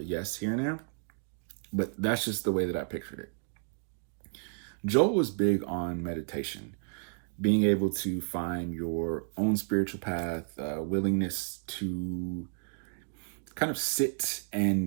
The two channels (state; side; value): silent; left; digital silence